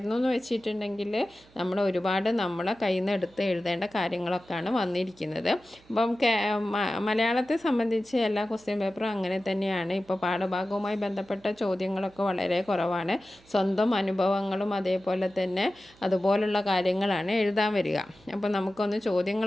എന്ന് വെച്ചിട്ടുണ്ടെങ്കിൽ നമ്മളെ കയ്യിൽ നിന്ന് എടുത്ത് എഴുതേണ്ട കാര്യങ്ങളൊക്കെയാണ് വന്നിരിക്കുന്നത്. അപ്പം മലയാളത്തെ സംബന്ധിച്ച് എല്ലാ ക്വസ്റ്റ്യൻ പേപ്പറും അങ്ങനെ തന്നെയാണ്. ഇപ്പോൾ പാഠഭാഗവുമായി ബന്ധപ്പെട്ട ചോദ്യങ്ങളൊക്കെ വളരെ കുറവാണ്. സ്വന്തം അനുഭവങ്ങളും അതേപോലെ തന്നെ അതുപോലുള്ള കാര്യങ്ങളാണ് എഴുതാൻ വരിക. അപ്പോൾ നമുക്കൊന്ന്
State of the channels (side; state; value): right; noise; hum, 28 dB below the sound